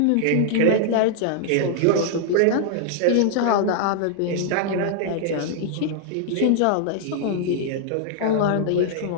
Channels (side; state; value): both; different; correlation -0.01